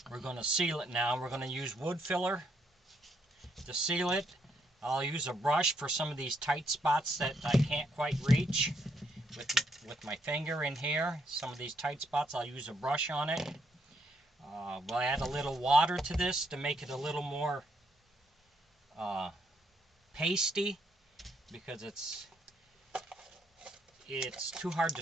We're going to seal it now. We're going to use wood filler to seal it. I'll use a brush for some of these tight spots that I can't quite reach with my finger in here. Some of these tight spots, I'll use a brush on it. We'll add a little water to this to make it a little more pasty, because it's too hard to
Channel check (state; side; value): normal; both; correlation 0.74